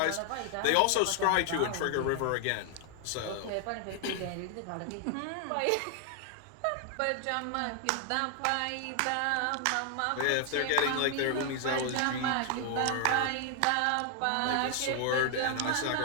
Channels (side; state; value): both; different; correlation 0.00